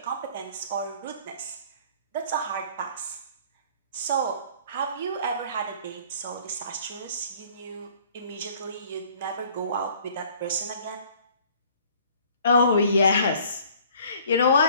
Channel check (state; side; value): inverted; both; correlation -0.55